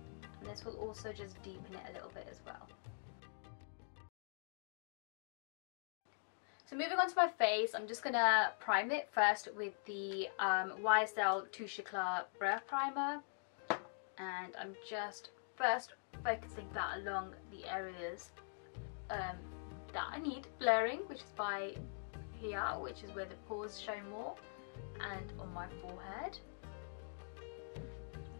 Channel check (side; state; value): right; silent; digital silence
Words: And this will also just deepen it a little bit as well. So moving on to my face, I'm just going to prime it first with the YSL Touche Eclat Brow Primer. And I'm just first focusing that along the areas that I need blurring, which is by here, which is where the pores show more, and on my forehead.